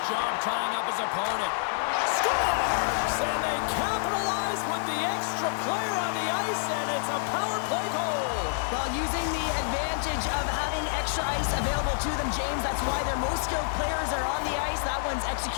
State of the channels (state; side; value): silent; right; 59 dB below the other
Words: job tying up his opponent. Scores! And they capitalize with the extra player on the ice, and it's a power play goal. While using the advantage of having extra ice available to them, James, that's why their most skilled players are on the ice. That one's